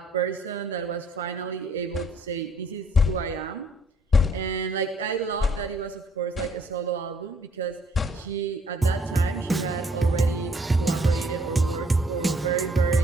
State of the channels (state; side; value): normal; both; correlation 0.63